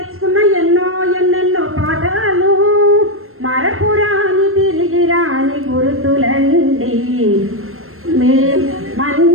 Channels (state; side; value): late; left; 0.62 ms